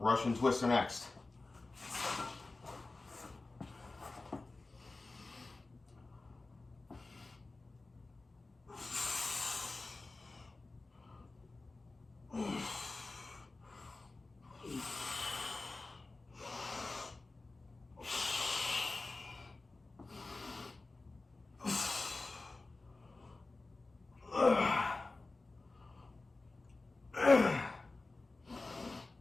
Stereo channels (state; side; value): quieter; right; 3.4 dB